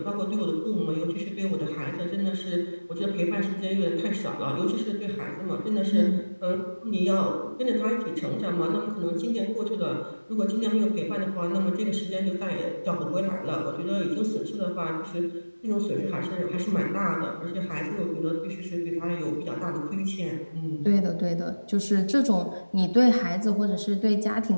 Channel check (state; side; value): inverted; both; correlation -1.00